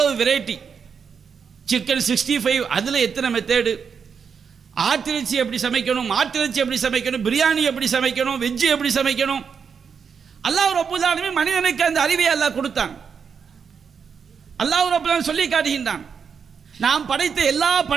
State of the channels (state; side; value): quieter; left; 6.4 dB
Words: வெரைட்டி. சிக்கன் 65 அதில் எத்தனை மெத்தேடு, ஆட்டிறைச்சி எப்படி சமைக்கணும், மாட்டிறைச்சி எப்படி சமைக்கணும், பிரியாணி எப்படி சமைக்கணும், வெஜ்ஜு எப்படி சமைக்கணும். அல்லாஹ் ரப்பல் ஆலமீன் மனிதனுக்கு அந்த அறிவை அல்லாஹ் கொடுத்தான். அல்லாஹ் ரப்பல் ஆலமீன் சொல்லி காட்டுகின்றான், நாம் படைத்த எல்லா